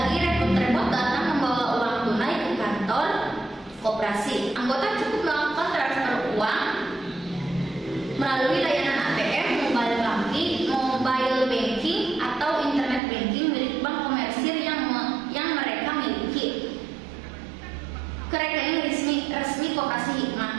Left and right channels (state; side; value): drops out; left; at 13.0 s